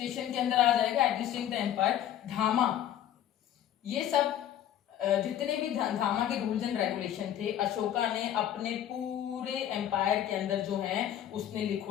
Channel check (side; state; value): right; quieter; 11.1 dB